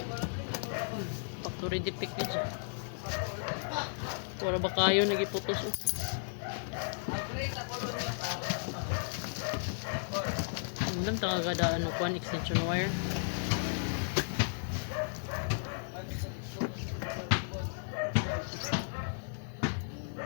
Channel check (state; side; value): silent; right; digital silence